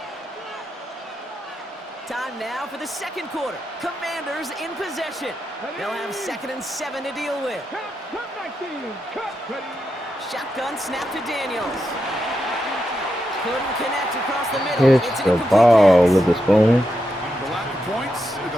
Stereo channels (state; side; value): normal; both; correlation 0.85